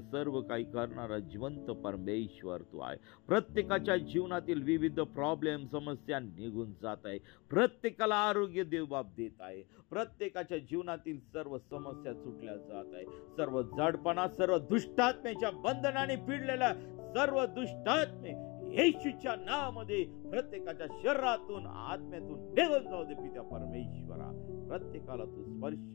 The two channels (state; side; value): quieter; right; 27.0 dB